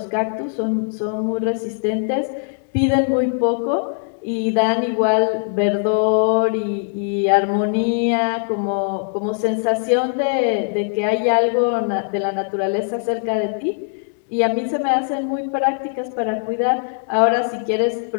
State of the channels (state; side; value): silent; right; digital silence